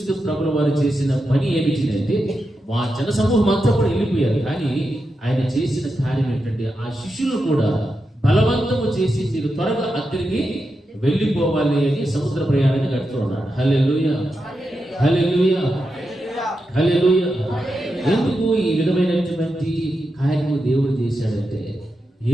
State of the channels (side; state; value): both; normal; correlation 0.88